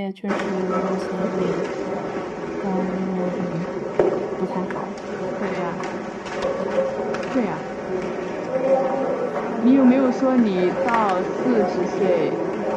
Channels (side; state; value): both; identical; correlation 1.00